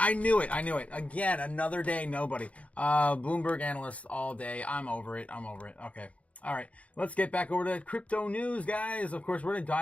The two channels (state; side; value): late; right; 0.065 ms